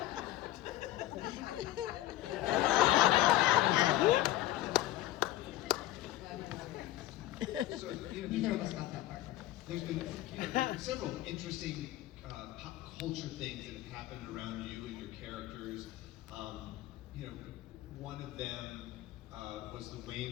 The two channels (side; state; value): right; quieter; 15.0 dB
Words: So, Neither of us got that part. there's been several interesting pop culture things that have happened around you and your characters. One of them was the